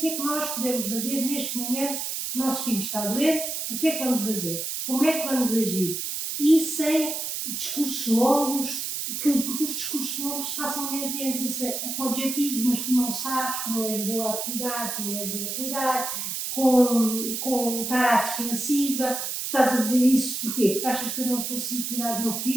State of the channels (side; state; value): right; noise; hiss, 3 dB below the sound